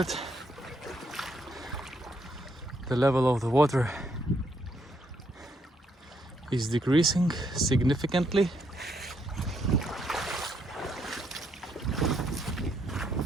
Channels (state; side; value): normal; both; correlation 0.74